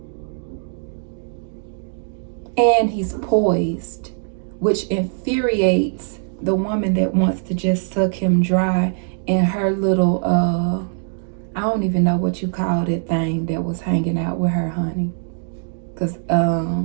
And he's poised, which infuriates the woman that wants to just suck him dry in her little, I don't even know what you call that thing that was hanging out with her, honey. Because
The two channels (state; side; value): silent; left; digital silence